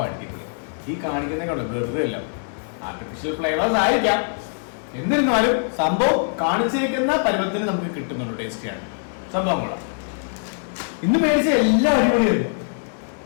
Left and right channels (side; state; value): right; silent; digital silence